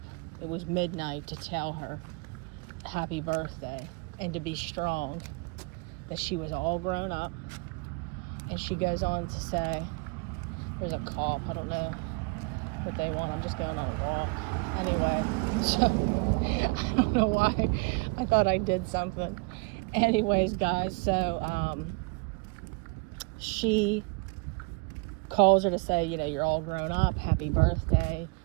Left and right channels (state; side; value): quieter; left; 30.4 dB